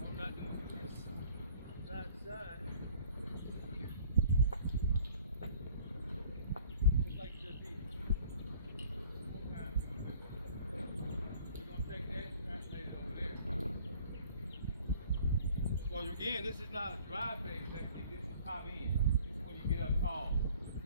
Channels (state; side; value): inverted; both; correlation -0.52